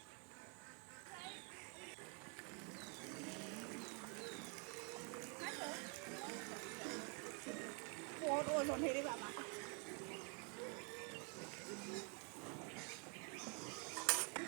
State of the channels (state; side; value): quieter; left; 36.4 dB